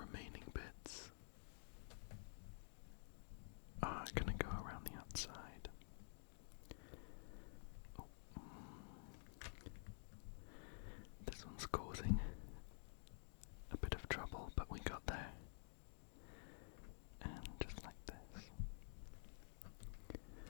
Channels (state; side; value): silent; right; digital silence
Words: bits are going to go around the outside. Oh. This one's causing a bit of trouble, but we got there. And just like this.